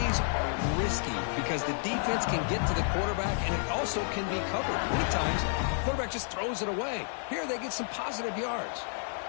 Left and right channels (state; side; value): silent; right; 57 dB below the other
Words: are risky because the defense can get to the quarterback, and it also can be covered. Many times, the quarterback just throws it away. Here, they get some positive yards.